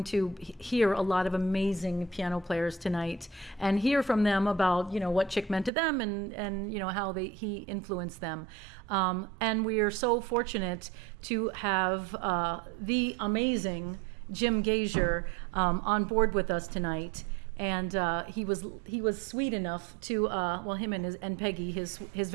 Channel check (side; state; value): left; drops out; at 5.7 s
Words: to hear a lot of amazing piano players tonight and hear from them about what Chick meant to them and how he influenced them. And we are so fortunate to have the amazing Jim Gasior on board with us tonight. And he was sweet enough to him and Peggy, his